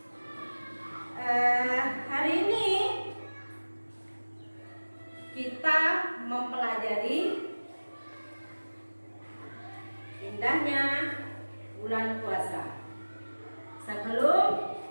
Hari ini kita mempelajari indahnya bulan puasa. Sebelum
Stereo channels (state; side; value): inverted; both; correlation -1.00